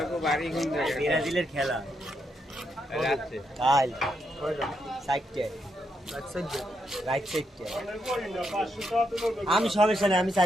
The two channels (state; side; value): normal; both; correlation 0.80